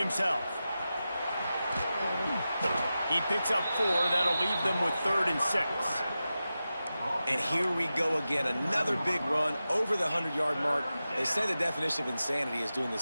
He picks up 4. That'll leave them with 3rd and 6. And here we go again. Another big run over the 100-yard mark. They say the definition of insanity is doing the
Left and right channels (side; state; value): both; inverted; correlation -0.93